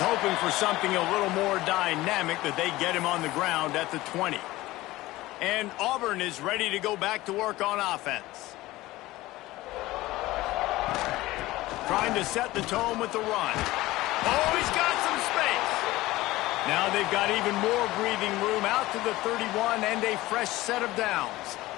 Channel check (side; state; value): right; quieter; 18.1 dB